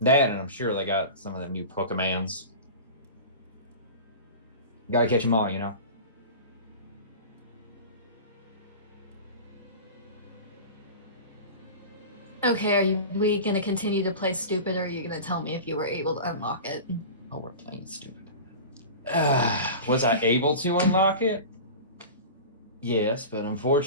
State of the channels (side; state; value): both; inverted; correlation -0.32